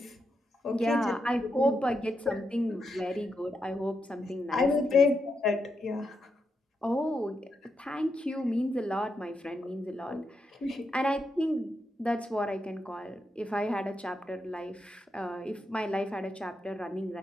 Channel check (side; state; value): both; normal; correlation 0.84